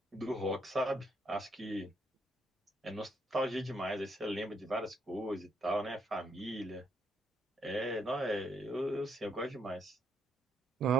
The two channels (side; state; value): both; normal; correlation 0.75